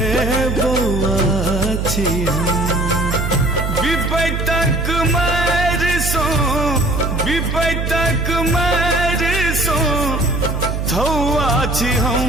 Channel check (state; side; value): noise; right; hum, 2 dB below the sound